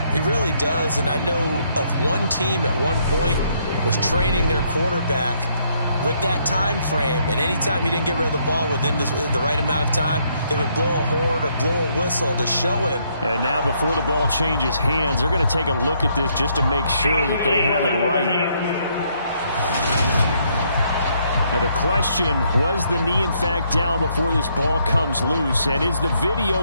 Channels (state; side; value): inverted; both; correlation -0.71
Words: He really does, and I know of one team at one point was training their quarterback with that time frame, and anytime he didn't get rid of the ball within the right amount of time, they would blow a horn or blow a whistle to show him. And now before the ball changes hands, they're going to take a look at this just to make sure that they have it right. Now the question, was the knee in fact down before this ball comes loose? And is the